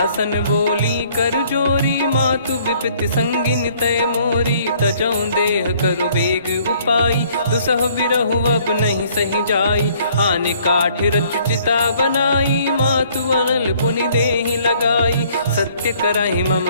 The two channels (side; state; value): both; inverted; correlation -0.60